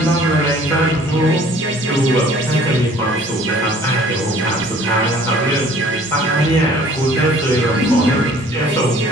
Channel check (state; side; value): normal; both; correlation 0.53